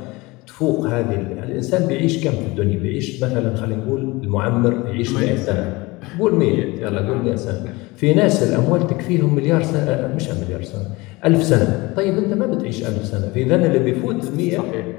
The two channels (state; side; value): quieter; right; 22.9 dB